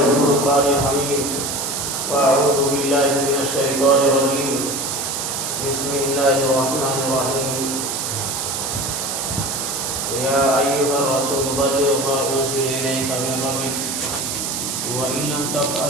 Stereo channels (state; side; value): noise; right; hiss, 3 dB below the sound